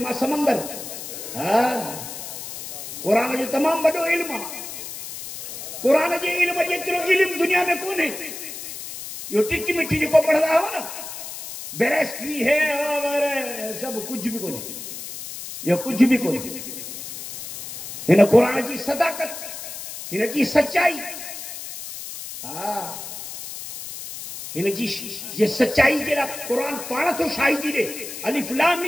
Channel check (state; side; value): noise; left; hiss, 10 dB below the sound